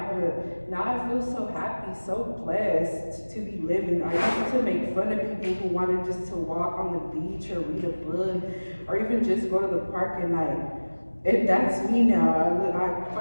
but now I feel so happy, so blessed to be living. I used to make fun of people who wanted just to walk on the beach or read a book or even just go to the park at night. And that's me now. I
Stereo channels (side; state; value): both; inverted; correlation -1.00